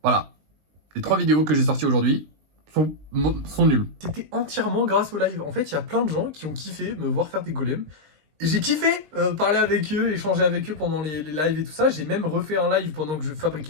Voilà. Les 3 vidéos que j'ai sorties aujourd'hui sont nulles. C'était entièrement grâce au live. En fait, il y a plein de gens qui ont kiffé me voir faire des golems. Et j'ai kiffé parler avec eux, échanger avec eux pendant les lives et tout ça. J'ai même refait un live pendant que je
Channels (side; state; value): left; late; 19 ms